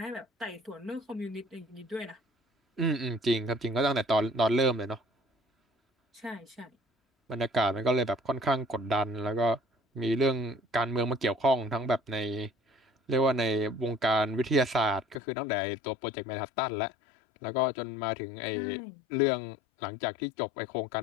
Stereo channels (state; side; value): drops out; right; at 15.2 s